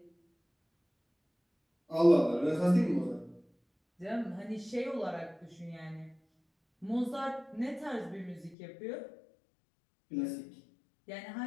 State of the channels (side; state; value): right; drops out; at 8.6 s